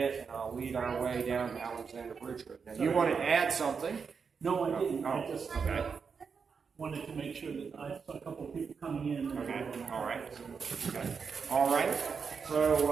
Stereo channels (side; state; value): left; quieter; 5.8 dB